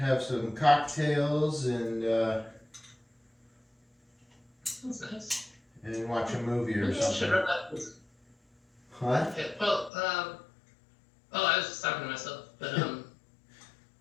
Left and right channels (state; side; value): drops out; right; at 9.9 s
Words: some cocktails and That's nice. and watch a movie or Maybe I should something. run that. What? Okay, well, I was just talking to myself, but